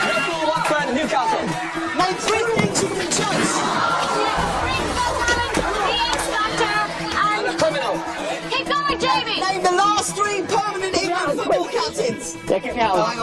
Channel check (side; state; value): both; identical; correlation 1.00